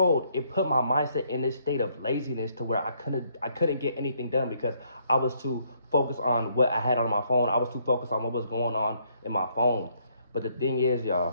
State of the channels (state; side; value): inverted; both; correlation -0.70